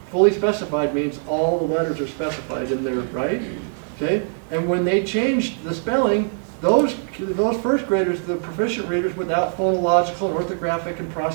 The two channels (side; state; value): left; silent; 64 dB below the other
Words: Fully specified means all the letters are specified in there, right? Okay, and when they changed the spelling, those first graders, the proficient readers without phonological and orthographic and